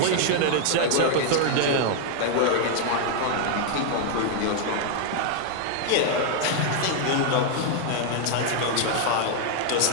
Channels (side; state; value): both; different; correlation 0.00